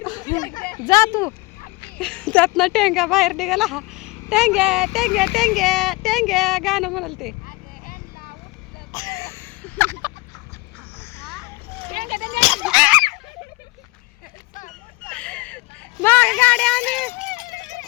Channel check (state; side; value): quieter; right; 24.2 dB